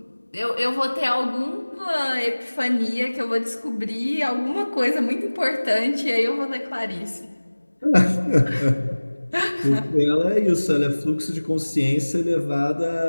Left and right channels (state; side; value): inverted; both; correlation -1.00